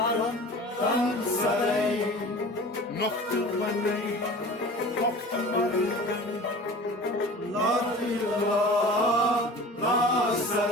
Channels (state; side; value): normal; both; correlation 0.40